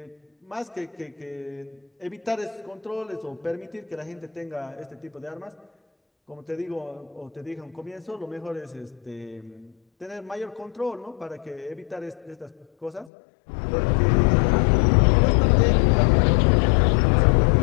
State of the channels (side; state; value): right; drops out; at 13.1 s